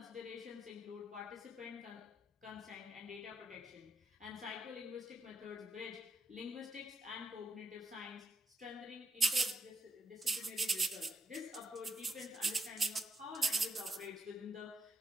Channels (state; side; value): normal; both; correlation 0.83